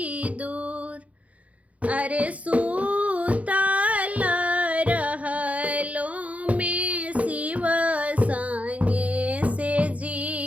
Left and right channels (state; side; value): late; left; 0.067 ms